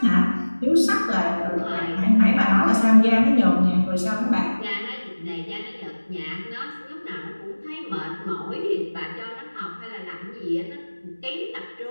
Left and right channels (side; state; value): both; inverted; correlation -1.00